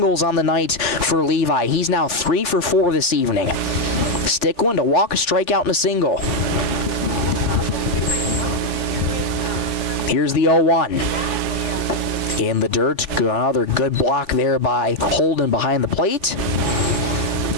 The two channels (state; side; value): late; right; 3.4 ms